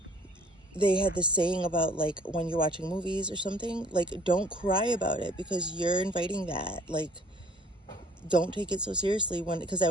they had this saying about, like, when you're watching movies or something, like, don't cry about it, because you're inviting that. Like, don't take it so seriously. Because I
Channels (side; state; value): both; normal; correlation 0.56